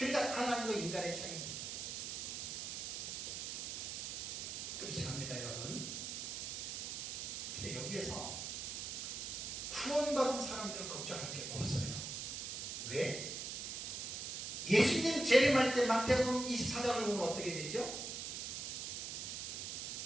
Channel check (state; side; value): noise; right; hiss, 4 dB below the sound